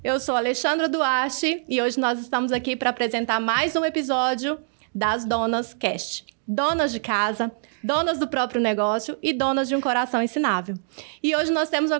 Eu sou Alexandra Duarte e hoje nós estamos aqui para apresentar mais um episódio das Donas Cast. Donas de casa, donas do próprio negócio e donas de um coração ensinável. E hoje nós temos uma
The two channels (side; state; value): left; silent; digital silence